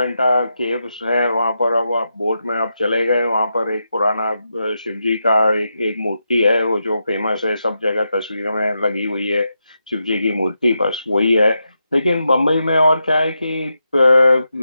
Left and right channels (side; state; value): both; inverted; correlation -0.86